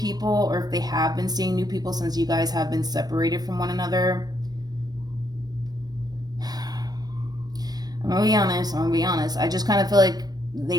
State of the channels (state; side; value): late; left; 0.19 ms